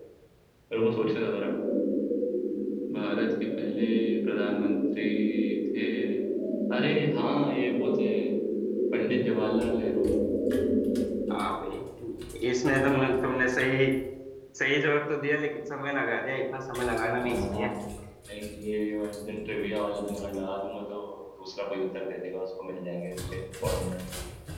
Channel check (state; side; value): identical; both; correlation 1.00